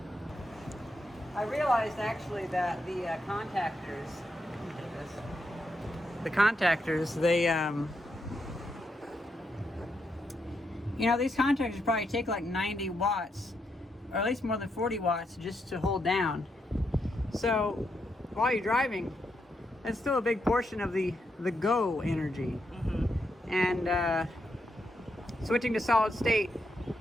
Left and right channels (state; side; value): normal; both; correlation 0.81